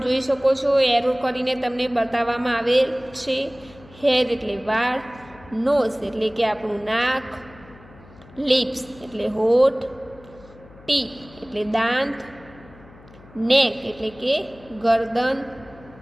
જોઈ શકો છો, એરો કરીને તમને બતાવવામાં આવેલ છે. હેર એટલે વાળ. નોઝ એટલે કે આપણું નાક. લિપ્સ એટલે હોઠ. ટીથ એટલે દાંત. નેક એટલે કે ગરદન.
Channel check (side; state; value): left; noise; hum, 22 dB below the sound